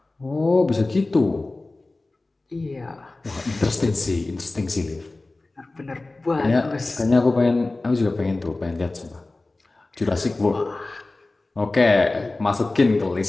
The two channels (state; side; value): quieter; right; 3.1 dB